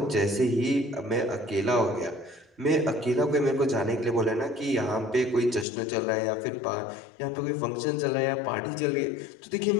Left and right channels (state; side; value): drops out; right; at 5.7 s